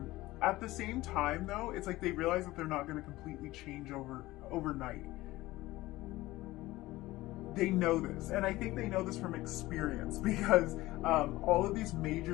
At the same time, though, it's like they realize that they're not going to completely change overnight. They know this, and I think they know this from experience, because all of these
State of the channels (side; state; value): right; quieter; 18.1 dB